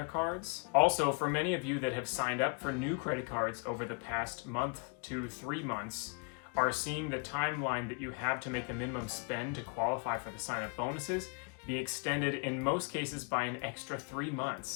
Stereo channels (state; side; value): quieter; right; 35.2 dB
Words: cards. Also, for many of you that have signed up for new credit cards over the past month to 3 months, are seeing the timeline that you have to make the minimum spend to qualify for the sign-up bonuses be extended in most cases by an extra 3